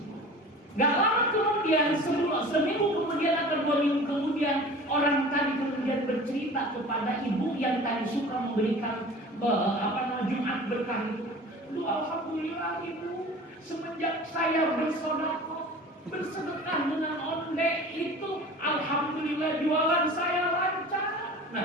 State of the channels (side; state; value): both; normal; correlation 0.40